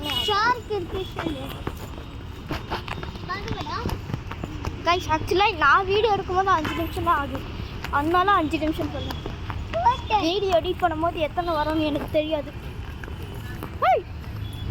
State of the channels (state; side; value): identical; both; correlation 1.00